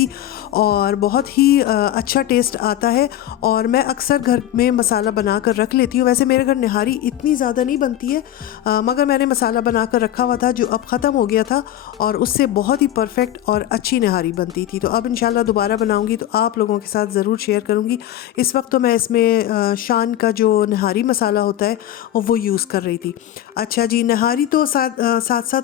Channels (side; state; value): right; quieter; 12.3 dB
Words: और बहुत ही अच्छा टेस्ट आता है। और मैं अक्सर घर में मसाला बना कर रख लेती हूँ। वैसे मेरे घर निहारी इतनी ज़्यादा नहीं बनती है, मगर मैंने मसाला बना कर रखा हुआ था जो अब ख़त्म हो गया था, और उससे बहुत ही परफेक्ट और अच्छी निहारी बनती थी। तो अब इंशाल्लाह दोबारा बनाऊंगी तो आप लोगों के साथ ज़रूर शेयर करूंगी। इस वक्त तो मैं इसमें शान का जो निहारी मसाला होता है वो यूज़ कर रही थी। अच्छा जी, निहारी तो साथ